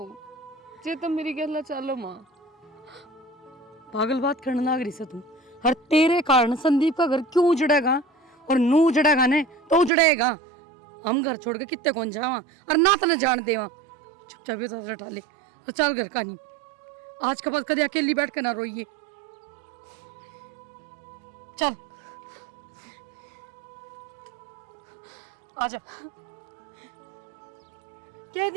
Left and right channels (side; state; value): left; drops out; at 9.9 s